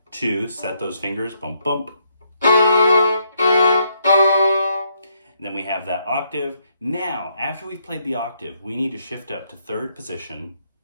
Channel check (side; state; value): both; inverted; correlation -0.74